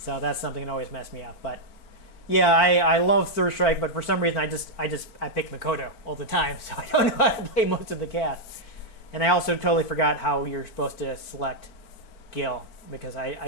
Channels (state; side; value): late; right; 4.5 ms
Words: that's something that always messed me up. But yeah, I love Third Strike, but for some reason I pick Makoto all the time, so I don't know how to play most of the cast. And I also totally forgot how you're supposed to select Gil, because